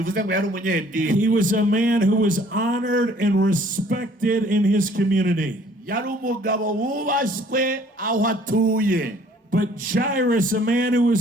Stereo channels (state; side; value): normal; both; correlation 0.57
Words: was a man who was honored and respected in his community. But Jairus, a man who